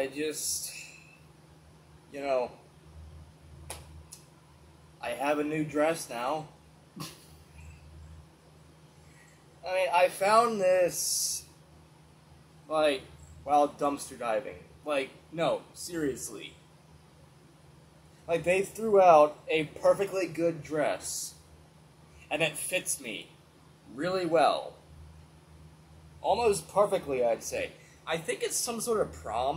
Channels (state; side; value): identical; both; correlation 1.00